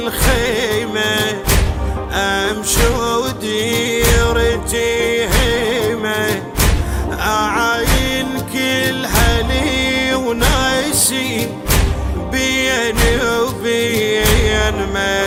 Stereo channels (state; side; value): identical; both; correlation 1.00